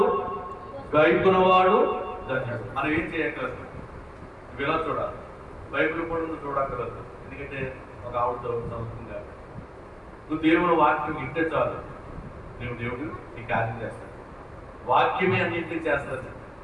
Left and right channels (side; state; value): both; identical; correlation 1.00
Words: గైకునవాడు ధన్యుడు. మనం ఏం చేయక్కర్లేదు, ఇలా చూడాలి. బైబిల్ కూడా చూడక్కర్లేదు. ఎందుకంటే ఒక ఆవిడతో సంస్కృతంగా నువ్వు దేవుడు వాక్యం ఇంటే చాలు, నువ్వు దేవుడు నీ కార్యం చేస్తాడు. వాక్యమే అన్నింటినీ చేస్తాడు.